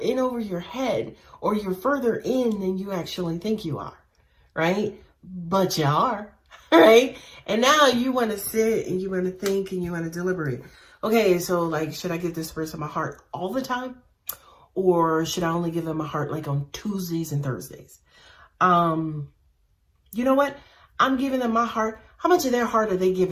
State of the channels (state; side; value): identical; both; correlation 1.00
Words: over your head, or you're further in than you actually think you are, right? But you are, right? And now you want to sit and you want to think and you want to deliberate. Okay, so like, should I give this person my heart all the time? Or should I only give them my heart like on Tuesdays and Thursdays? You know what? I'm giving them my heart. How much of their heart are they